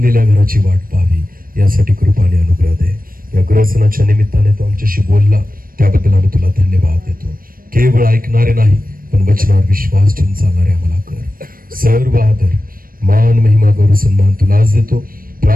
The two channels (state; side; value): late; left; 0.41 ms